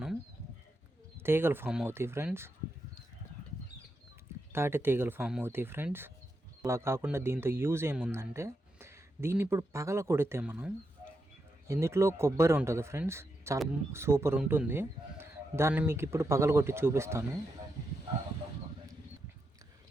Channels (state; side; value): normal; both; correlation 0.84